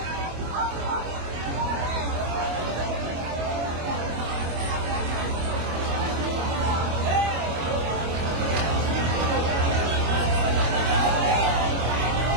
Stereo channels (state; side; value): late; left; 25 ms